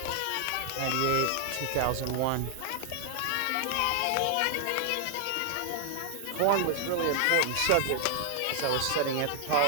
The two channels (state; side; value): different; both; correlation 0.00